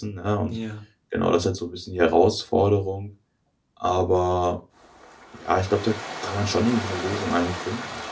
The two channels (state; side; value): identical; both; correlation 1.00